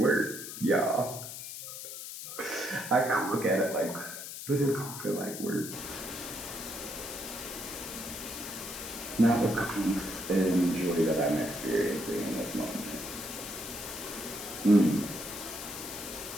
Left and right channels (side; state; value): left; noise; hiss, 9 dB below the sound